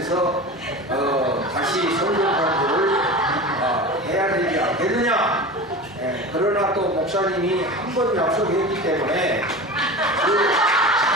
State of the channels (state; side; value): normal; both; correlation 0.31